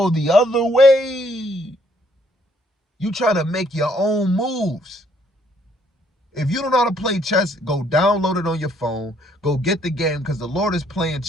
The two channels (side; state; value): both; normal; correlation 0.67